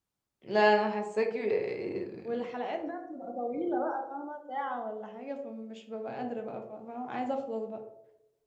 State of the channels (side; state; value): both; identical; correlation 1.00